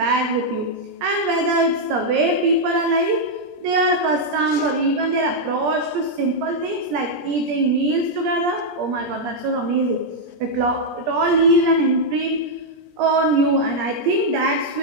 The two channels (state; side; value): late; left; 17 ms